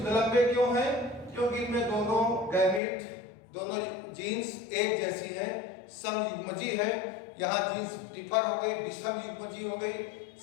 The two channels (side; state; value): right; drops out; at 2.8 s